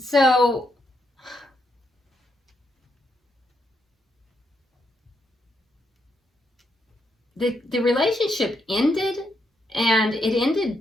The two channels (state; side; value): normal; both; correlation 0.79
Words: the relationship ended, and it ended